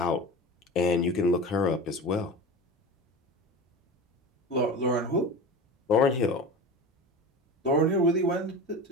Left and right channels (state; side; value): normal; both; correlation 0.30